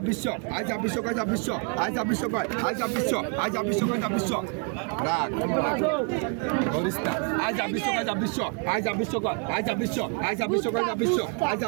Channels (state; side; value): quieter; left; 38.9 dB